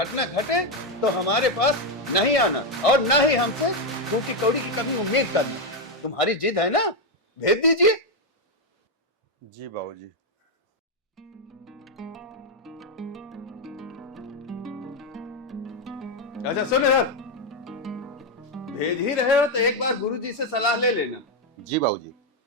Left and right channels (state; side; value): normal; both; correlation 0.04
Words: घटे तो हमारे पास नहीं आना और ना ही हमसे टूटी कौड़ी की कभी उम्मीद करना। तुम्हारी जिद है ना, भेज दीजिए। जी बाबूजी। अच्छा सुन इधर, भेज ही रहे हो तो एक बार गुरुजी से सलाह ले लेना। जी बाबूजी।